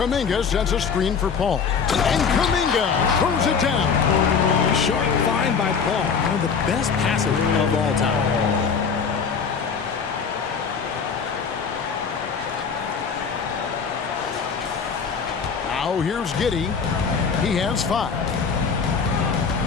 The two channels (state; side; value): quieter; right; 6.0 dB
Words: sends a screen for Paul. And Kuminga throws it down. Sharp find by Paul. One of the best passes of all time. Now here's Giddey. He has 5.